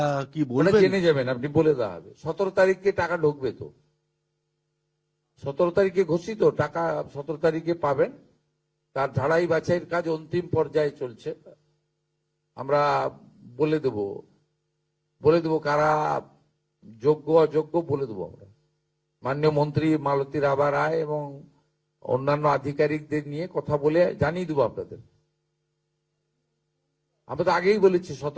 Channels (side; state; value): both; identical; correlation 1.00